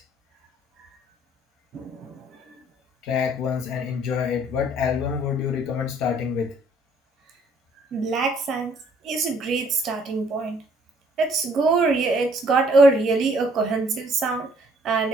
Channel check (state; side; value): normal; both; correlation 0.61